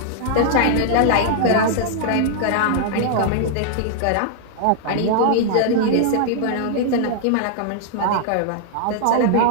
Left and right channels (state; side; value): different; both; correlation -0.01